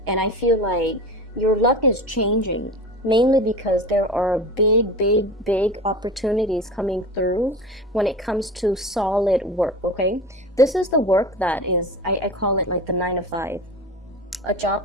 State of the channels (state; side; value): normal; both; correlation 0.31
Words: And I feel like your luck is changing, mainly because there are big opportunities coming through when it comes to solid work, okay? This is the work that is, I call it like the 9 to 5. A